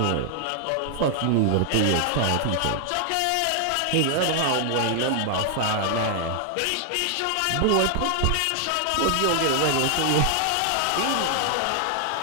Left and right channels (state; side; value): different; both; correlation 0.00